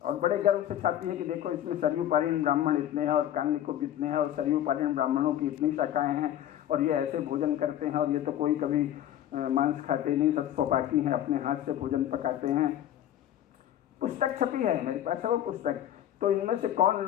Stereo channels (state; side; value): quieter; right; 11.7 dB